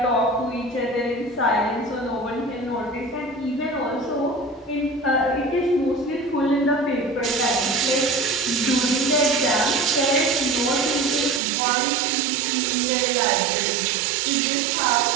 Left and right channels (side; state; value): left; drops out; at 11.4 s